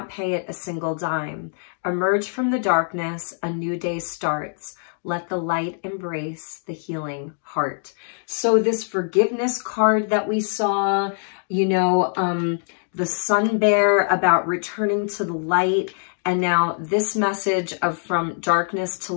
pay it a single dime. Emerge from the darkness, a new day starts. Let the light embrace the healing heart. So this forgiveness card that we saw, you know, the sun bear about returning to the light. And now this message of from darkness to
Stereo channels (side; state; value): right; silent; digital silence